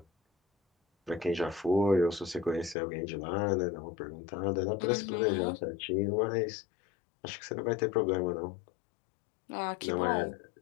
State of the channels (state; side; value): drops out; right; at 2.8 s